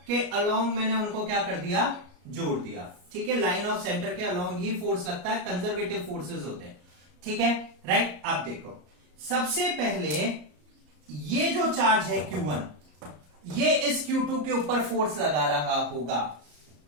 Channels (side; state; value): left; late; 34 ms